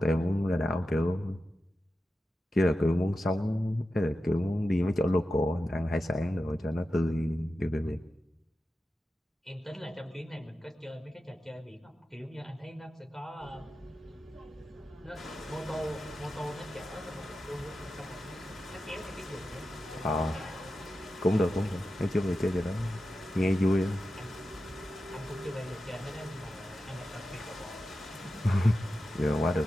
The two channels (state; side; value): normal; both; correlation 0.91